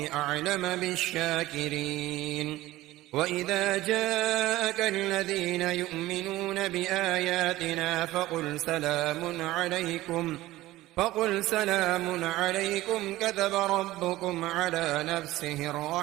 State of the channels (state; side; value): quieter; left; 17.0 dB